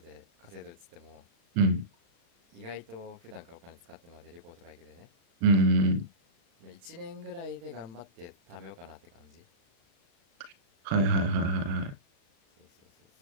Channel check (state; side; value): late; left; 36 ms